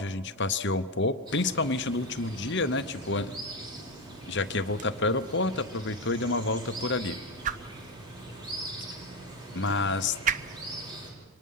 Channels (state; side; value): normal; both; correlation 0.12